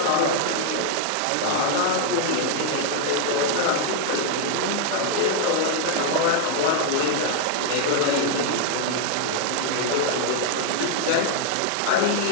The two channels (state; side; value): different; both; correlation 0.00